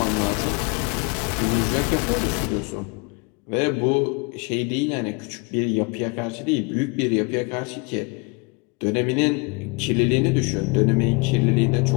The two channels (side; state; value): right; quieter; 29.5 dB